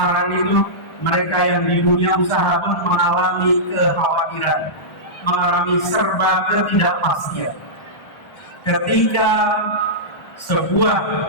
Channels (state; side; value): late; right; 1.4 ms